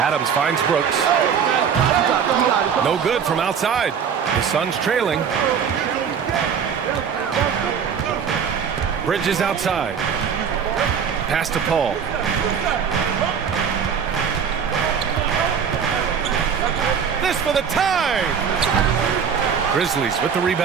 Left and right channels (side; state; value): left; quieter; 7.1 dB